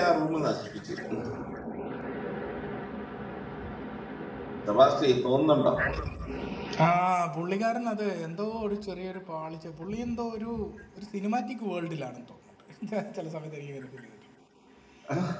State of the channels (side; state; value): both; identical; correlation 1.00